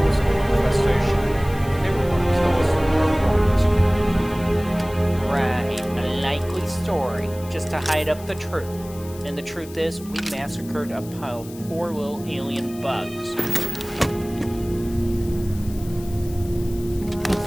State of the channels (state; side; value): noise; left; hiss, 19 dB below the sound